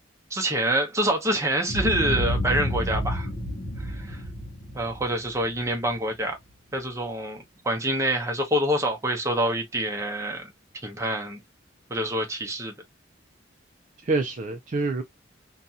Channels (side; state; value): both; normal; correlation 0.33